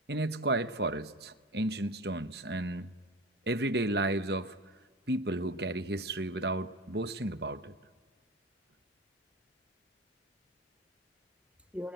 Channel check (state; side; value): normal; both; correlation 0.31